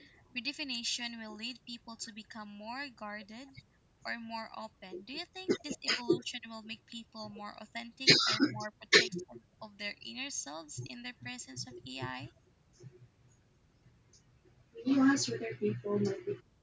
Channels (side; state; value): both; identical; correlation 1.00